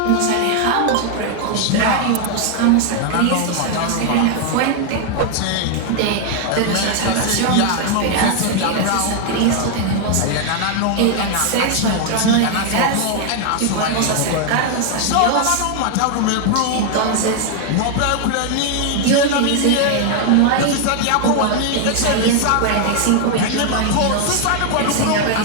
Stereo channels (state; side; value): different; both; correlation 0.00